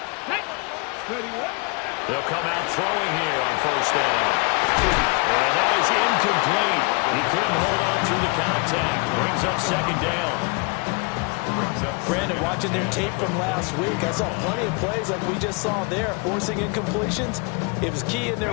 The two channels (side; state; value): right; quieter; 31.2 dB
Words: They'll come out throwing here on 1st down. And that is incomplete. He couldn't hold on through the contact. Brings up 2nd down. Brandon, watching their tape from last week, I saw plenty of plays like we just saw there, forcing incompletions. It was key in